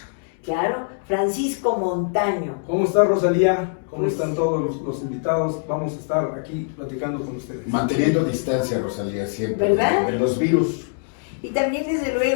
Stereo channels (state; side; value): silent; right; digital silence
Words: Claro, Francisco Montaño. ¿Cómo está Rosalía? ¿Cómo Pues, están todos los invitados? Vamos a estar aquí platicando con ustedes. Manteniendo distancia, Rosalía, siempre. ¿Verdad? De los virus. Y también desde